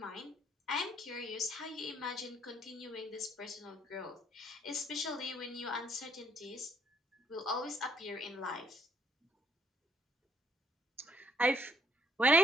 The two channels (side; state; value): both; normal; correlation 0.67